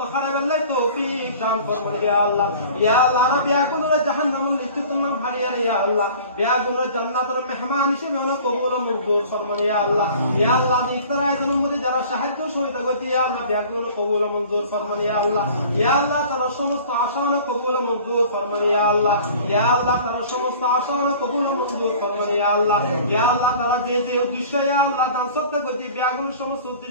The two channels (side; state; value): both; inverted; correlation -0.45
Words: করাবেলাই তৌফিক দান ফরমান ইয়া আল্লাহ রব ইয়া গুনাহ জাহান্নামের লিস্ট তুমি ভারিয়া ইয়া আল্লাহ গুনাহ জান্নাতের মেহমান হিসেবে আমরা কবুল মঞ্জুর ফরমান ইয়া আল্লাহ ইফতার আয়োজনের মধ্যে যারা সাহায্য সহযোগিতা করছে ইয়া আল্লাহ গুনাহ কবুল মঞ্জুর ফরমান ইয়া আল্লাহ তারা সমস্ত আশা কবুল মঞ্জুর ফরমান ইয়া আল্লাহ তারা সমস্ত আশা কবুল মঞ্জুর ফরমান ইয়া আল্লাহ তারা যে যে উদ্দেশ্য ইয়া আল্লাহ দান সত্য করছে গুনাহ সমস্ত